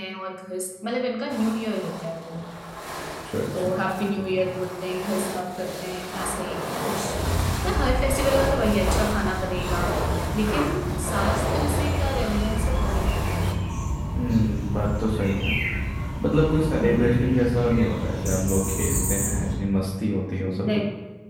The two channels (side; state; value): both; identical; correlation 1.00